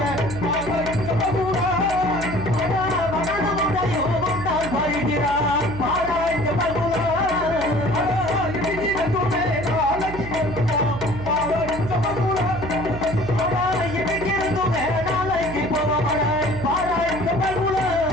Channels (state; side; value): noise; right; hum, 10 dB below the sound